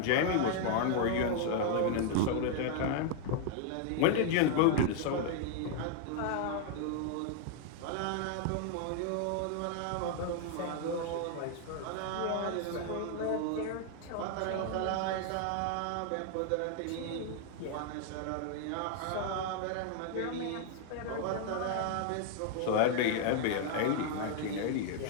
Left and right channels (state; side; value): different; both; correlation 0.00